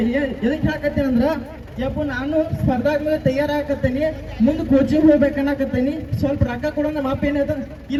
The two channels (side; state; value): both; identical; correlation 1.00